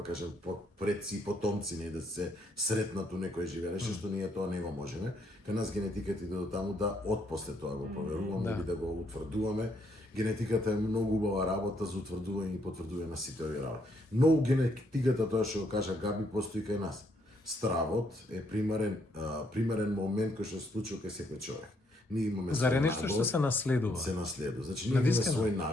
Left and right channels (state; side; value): normal; both; correlation 0.72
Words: да кажем, предци и потомци, не да се сретнат у некој живее, што ние тоа не го можеме. Кај нас генетиката иде до таму да отпосле тоа го проверуваме или да го утврдуваме. Генетиката е многу убава работа за утврдување и потврдување на сите овие работи. Но генетиката, тоа што го кажа Габи, постои кај нас. Стравот е примерен момент кој што се случува кај секој човек. Ние имаме Заре нешто што се наследува. Се наследува. Значи ние имаме свои